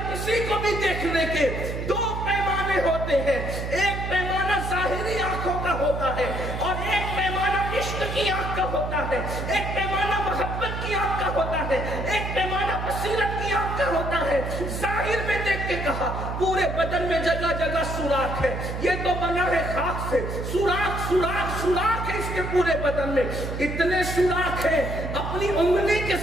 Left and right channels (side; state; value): right; noise; hum, 5 dB below the sound